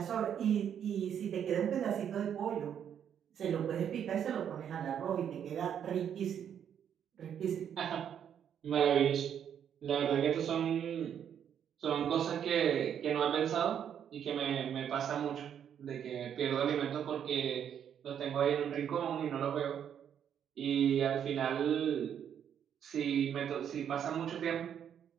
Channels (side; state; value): left; quieter; 8.8 dB